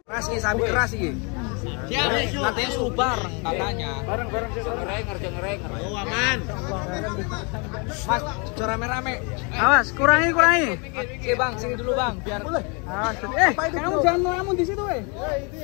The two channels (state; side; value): quieter; right; 33.0 dB